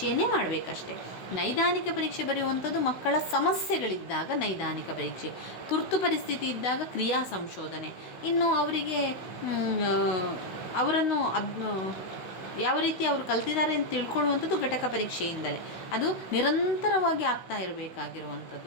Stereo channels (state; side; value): late; right; 16 ms